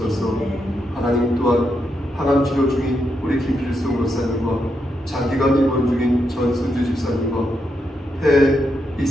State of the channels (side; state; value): both; normal; correlation 0.82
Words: 하나님 또한 항암 치료 중인 우리 김필승 권사님과 장기간 입원 중인 전순주 집사님과 폐